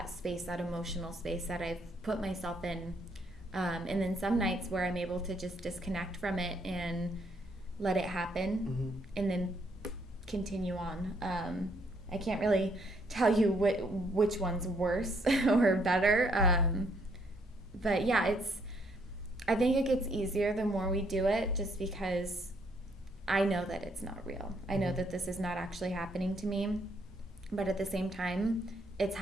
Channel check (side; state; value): both; normal; correlation 0.70